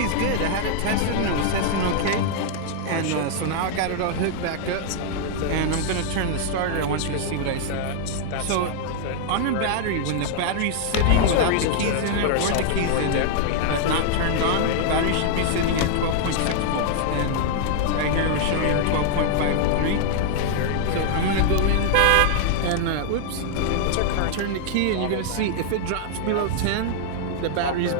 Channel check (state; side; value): different; both; correlation 0.00